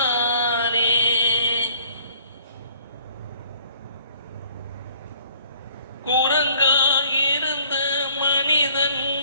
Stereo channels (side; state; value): both; inverted; correlation -0.57